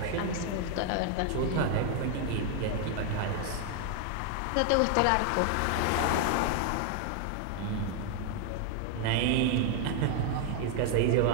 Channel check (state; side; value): different; both; correlation 0.00